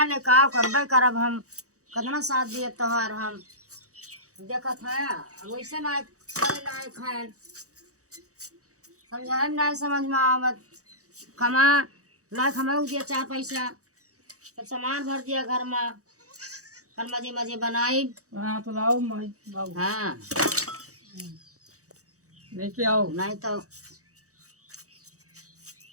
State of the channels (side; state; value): left; late; 0.65 ms